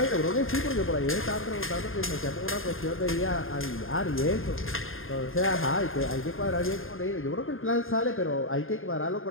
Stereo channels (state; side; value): late; right; 0.60 ms